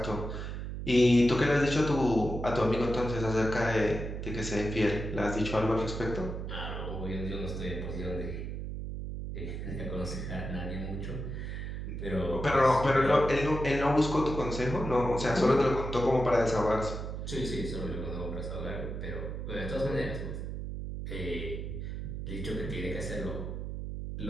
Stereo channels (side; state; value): right; noise; hum, 5 dB below the sound